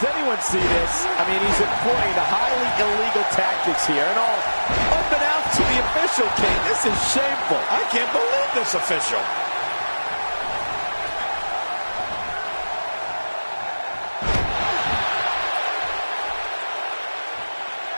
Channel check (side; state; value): both; inverted; correlation -1.00